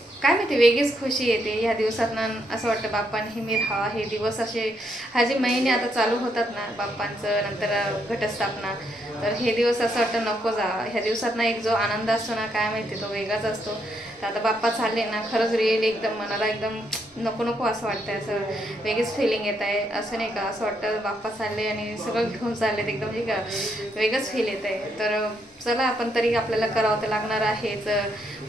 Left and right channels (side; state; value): both; normal; correlation 0.76